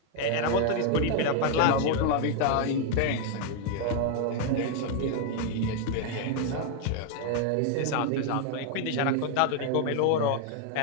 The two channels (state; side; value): different; both; correlation 0.00